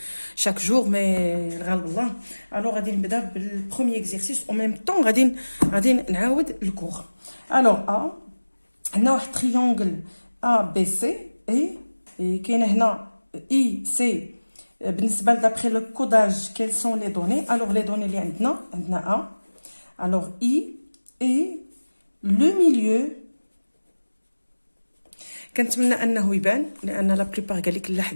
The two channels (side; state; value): both; inverted; correlation -1.00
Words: شاك جور مي الغالب الله. الوغ غادي نبدا بالبروميي اكزرسيس او ميم طون غادي نعاود الكور. الوغ عندنا واحد تريونغل ا بي سي اي كاينه هنا اي سي. بالنسبه دابخي لو كوداج كيل سون لي دوني؟ الوغ لي دوني اللي عندنا ا. الوغ اي اي لو ميليو كنتمنى انه يبان، لان لا بليبار قال لك لا